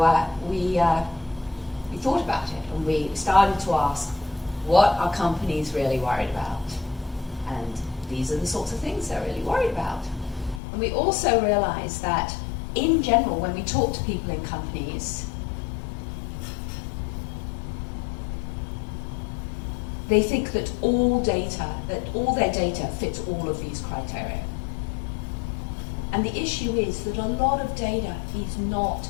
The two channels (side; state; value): right; drops out; at 10.6 s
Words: we thought about it, and we started to ask, what are companies really worried about? And these are the sorts of things they're really worried about. And we also realized that in general, when we talk to people in companies, they think that all their data fits all of these criteria. And the issue is that a lot of data